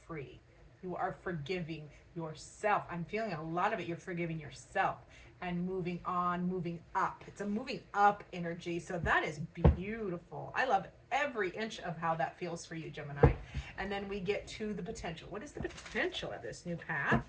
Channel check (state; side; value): identical; both; correlation 1.00